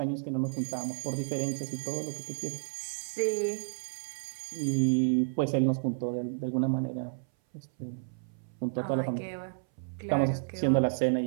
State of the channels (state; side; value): silent; left; 57 dB below the other